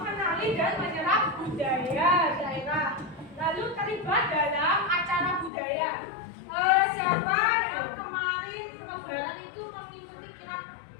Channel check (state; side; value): drops out; right; at 5.5 s